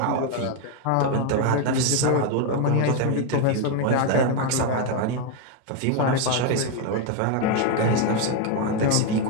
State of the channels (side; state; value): both; different; correlation 0.01